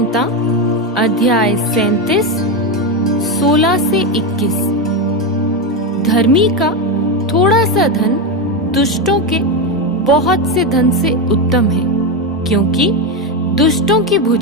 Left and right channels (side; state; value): both; normal; correlation 0.11